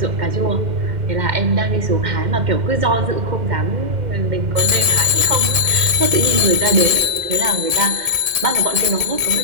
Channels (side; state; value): left; late; 2.1 ms